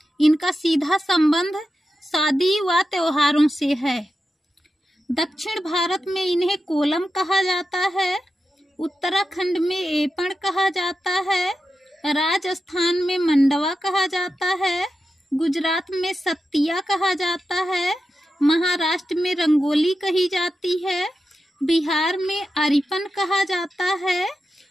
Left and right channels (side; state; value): both; normal; correlation 0.90